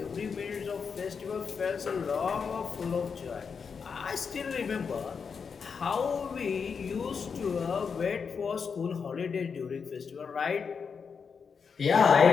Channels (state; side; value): quieter; right; 5.9 dB